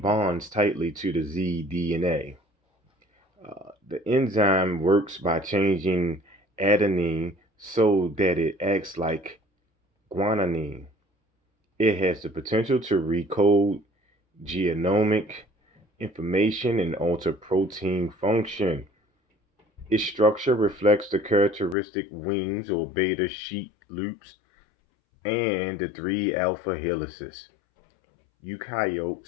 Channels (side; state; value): right; drops out; at 21.8 s